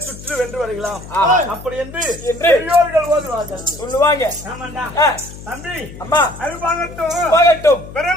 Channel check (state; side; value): noise; left; hum, 15 dB below the sound